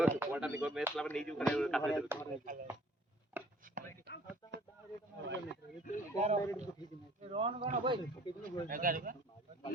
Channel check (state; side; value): normal; both; correlation 0.55